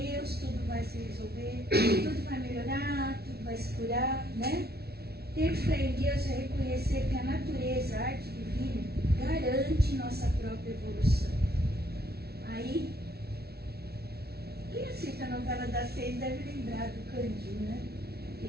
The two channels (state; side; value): late; left; 0.46 ms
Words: tudo vai se resolver, tudo vai melhorar, tudo vai se curar, né? Ter fé em Deus é reconhecer que a natureza, a arte divina, garante nossa própria evolução. Aí, quem assiste a novela das 6 deve lembrar do Candinho, né?